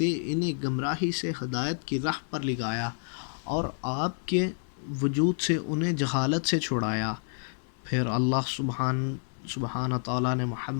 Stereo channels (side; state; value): right; silent; digital silence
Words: انہیں گمراہی سے ہدایت کی راہ پر لگایا اور آپ کے وجود سے انہیں جہالت سے چھڑایا۔ پھر اللہ سبحانہ تعالیٰ نے